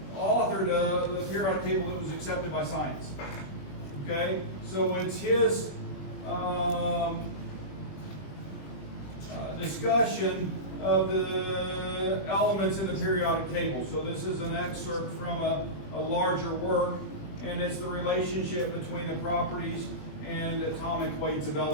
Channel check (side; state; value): right; late; 20 ms